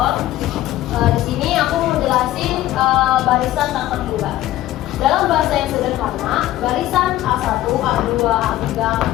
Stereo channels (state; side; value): quieter; right; 14.7 dB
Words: Di sini aku mau jelasin barisan tak terhingga. Dalam bahasa yang sederhana, barisan A1, A2, A3,